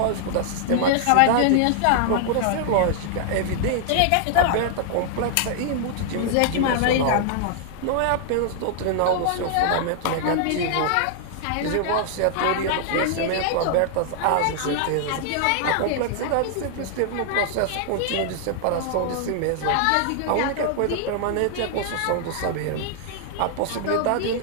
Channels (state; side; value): different; both; correlation -0.01